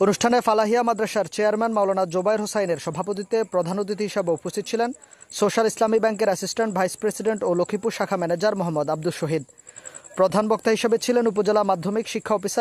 অনুষ্ঠানে ফালাহিয়া মাদ্রাসার চেয়ারম্যান মাওলানা জোবায়ের হোসাইনের সভাপতিত্বে প্রধান অতিথি হিসেবে উপস্থিত ছিলেন সোশ্যাল ইসলামী ব্যাংকের অ্যাসিস্ট্যান্ট ভাইস প্রেসিডেন্ট ও লক্ষ্মীপুর শাখা ম্যানেজার মোহাম্মদ আব্দুল শহীদ। প্রধান বক্তা হিসেবে ছিলেন উপজেলা মাধ্যমিক শিক্ষা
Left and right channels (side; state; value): both; identical; correlation 1.00